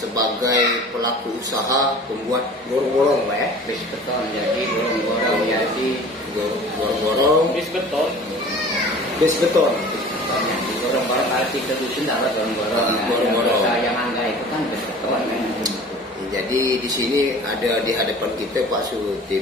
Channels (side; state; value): both; normal; correlation 0.43